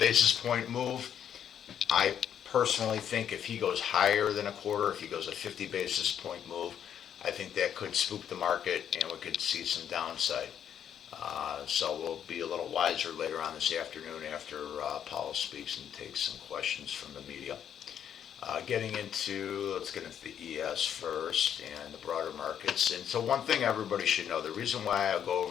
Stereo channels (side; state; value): right; quieter; 9.1 dB